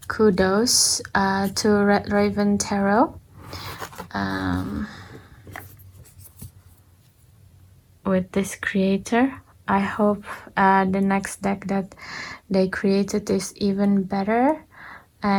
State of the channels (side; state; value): both; identical; correlation 1.00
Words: kudos to Red Raven Tarot. With this creator, I hope the next deck that they created is even better,